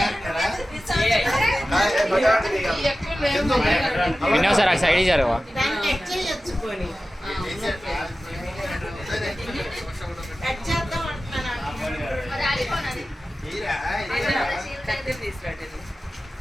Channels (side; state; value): both; normal; correlation 0.95